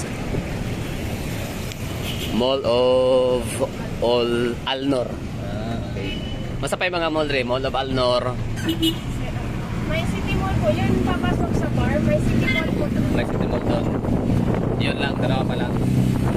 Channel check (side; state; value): both; identical; correlation 1.00